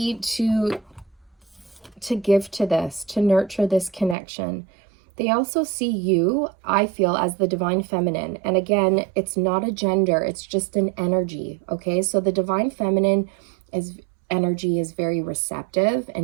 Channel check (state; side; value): drops out; left; at 4.2 s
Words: to give to this, to nurture this connection. They also see you, I feel, as the divine feminine. And again, it's not a gender, it's just an energy, okay? So the divine feminine energy is very receptive